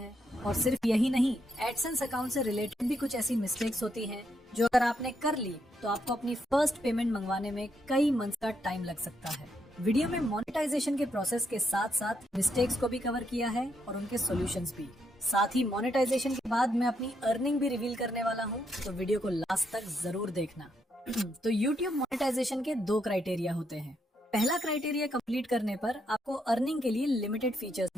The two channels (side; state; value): both; normal; correlation 0.78